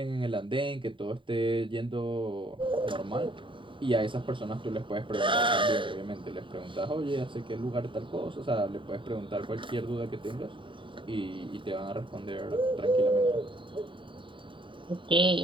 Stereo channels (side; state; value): left; late; 0.24 ms